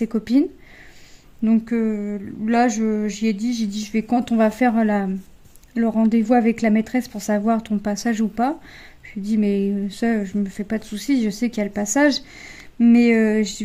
copines. Donc, là, j'ai dit, je vais, quand on va faire le rendez-vous avec la maîtresse pour savoir ton passage ou pas. Je lui ai dit, mais ça, je me fais pas de soucis, je sais qu'il y a le passage. Mais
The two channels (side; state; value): both; identical; correlation 1.00